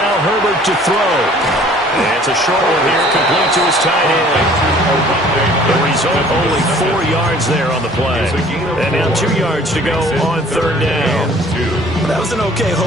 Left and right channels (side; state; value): both; normal; correlation 0.53